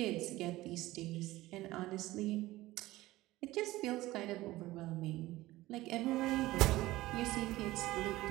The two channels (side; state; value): left; quieter; 17.6 dB